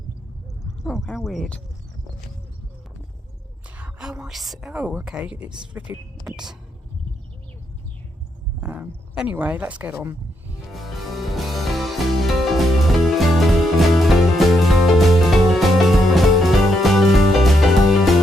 Oh, how weird. Oh, okay, it's flipping. Anyway, let's get on.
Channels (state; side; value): normal; both; correlation 0.78